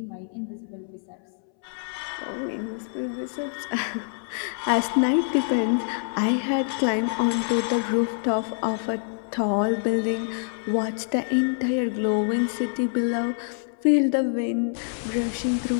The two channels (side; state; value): right; silent; 61 dB below the other